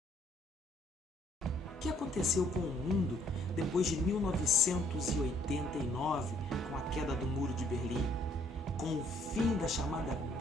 O que aconteceu com o mundo depois de 1989, com a queda do Muro de Berlim, com o fim da chamada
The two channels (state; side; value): normal; both; correlation 0.64